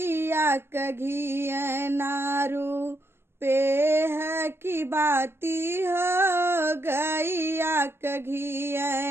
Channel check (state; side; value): late; left; 0.12 ms